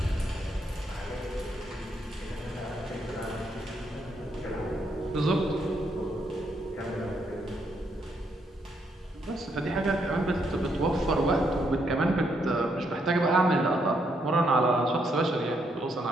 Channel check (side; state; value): both; normal; correlation 0.75